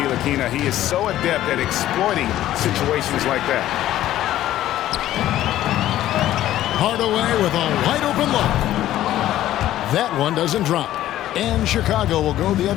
He is so adept at exploiting situations like that. Hardaway with a wide open look. That one doesn't drop. And Chicago will go the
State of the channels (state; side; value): quieter; right; 13.4 dB